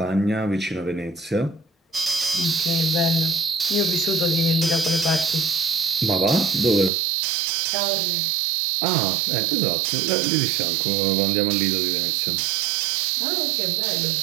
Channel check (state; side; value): drops out; left; at 6.9 s